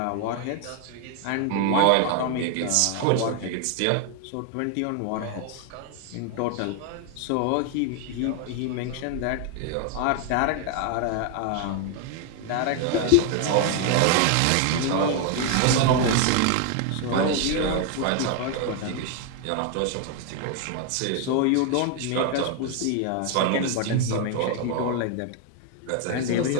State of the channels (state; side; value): different; both; correlation 0.01